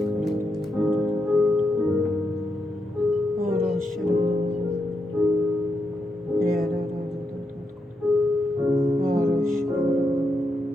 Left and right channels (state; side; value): normal; both; correlation 0.83